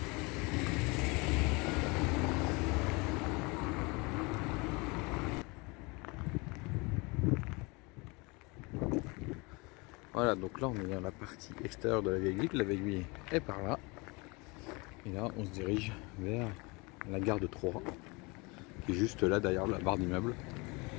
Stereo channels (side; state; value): right; quieter; 27.1 dB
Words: Voilà, donc là on est dans la partie extérieure de la vieille ville. La vieille ville est par là. Et là on se dirige vers la gare de Troyes, qui est juste là derrière la barre d'immeubles.